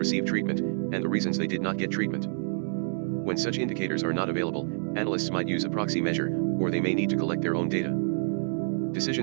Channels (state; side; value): silent; left; 59 dB below the other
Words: treatment, and the reasons they did not get treatment. When such indicators are not available, analysts might use a proxy measure, or they may need to collect their own data.